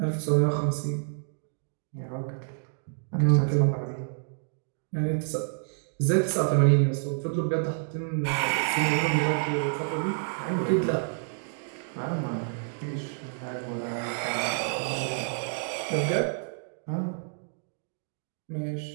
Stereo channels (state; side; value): silent; left; digital silence